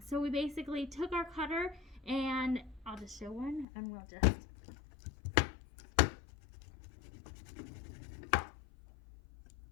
So we basically took our cutter, and I'll just show one, and we'll just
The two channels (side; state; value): right; drops out; at 3.7 s